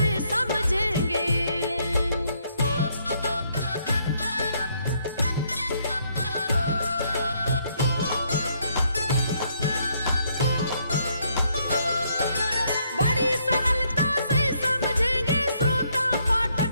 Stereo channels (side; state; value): both; inverted; correlation -0.71